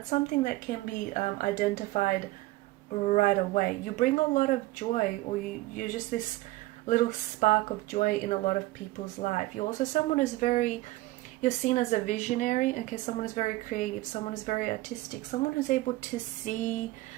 something that can be identified right away. You bring a lot of joy, or you're just this little spark of joy in a lot of people's life. You're also someone who's you're seen as a visionary, okay? Someone who's very creative, someone who's very artistic, someone who's able to see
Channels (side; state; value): left; quieter; 18.8 dB